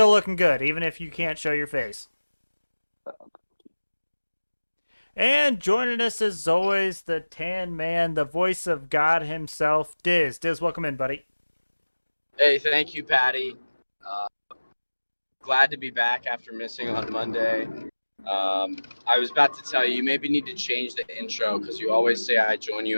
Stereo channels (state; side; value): inverted; both; correlation -1.00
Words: looking good, even if you can't show your face. And joining us, as always, the tan man, the voice of God himself, Dizz. Dizz, welcome in, buddy. Hey, thank you, Patty. Uh, Glad to be back after missing on Monday. I was about to tell you, you maybe need to change the intro because you always say I join you